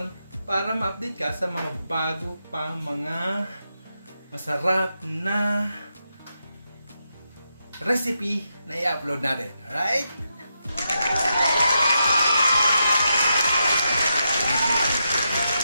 para ma-update ka sa mga bago pang mga masarap na recipe na i-upload natin. Alright?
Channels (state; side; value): inverted; both; correlation -0.84